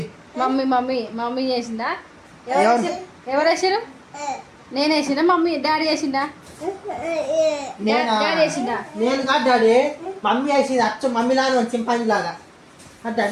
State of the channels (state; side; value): identical; both; correlation 1.00